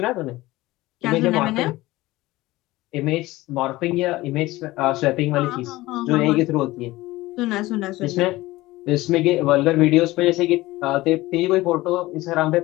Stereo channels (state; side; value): quieter; right; 18.7 dB